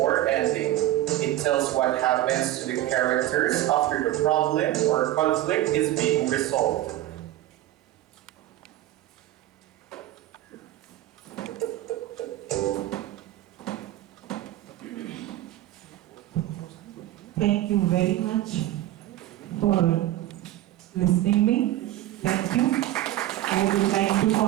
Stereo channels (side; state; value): left; quieter; 14.4 dB